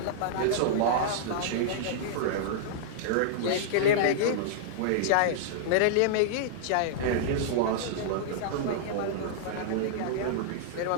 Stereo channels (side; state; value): both; different; correlation -0.02